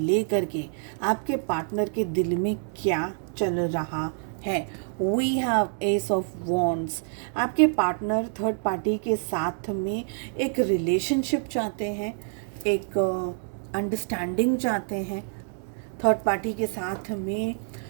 के आपके पार्टनर के दिल में क्या चल रहा है। We have ace of wands. आपके पार्टनर थर्ड पार्टी के साथ में एक रिलेशनशिप चाहते हैं, एक अंडरस्टैंडिंग चाहते हैं, थर्ड पार्टी के साथ में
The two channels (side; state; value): left; silent; 60 dB below the other